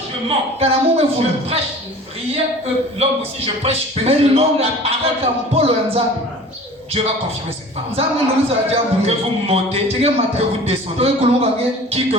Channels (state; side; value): normal; both; correlation 0.43